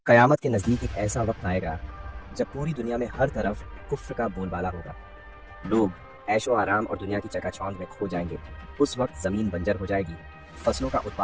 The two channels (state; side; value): identical; both; correlation 1.00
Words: قیامت کے نزدیک ایک ایسا وقت آئے گا جب پوری دنیا میں ہر طرف کفر کا بول بالا ہوگا۔ لوگ عیش و آرام اور دنیا کی چکا چوند میں کھو جائیں گے۔ اس وقت زمین بنجر ہو جائے گی، فصلوں کا